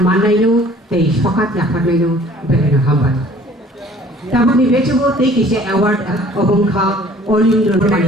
mannainu tei sokat yafarnainu belena hambai tabuk ni bechugo tei kise award obongkha Olindro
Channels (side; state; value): both; normal; correlation 0.53